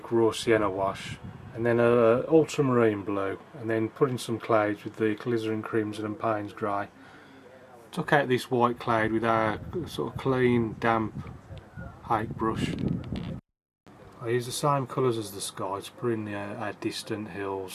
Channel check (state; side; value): identical; both; correlation 1.00